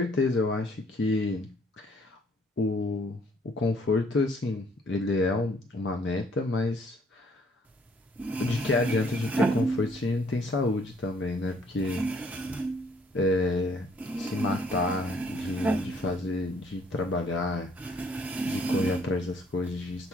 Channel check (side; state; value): both; normal; correlation 0.63